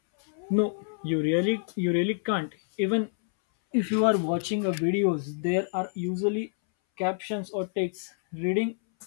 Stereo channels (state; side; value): silent; right; 60 dB below the other